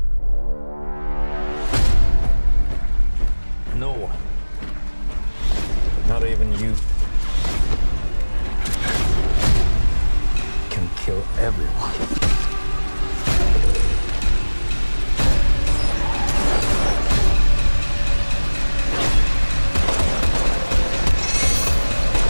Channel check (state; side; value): inverted; both; correlation -1.00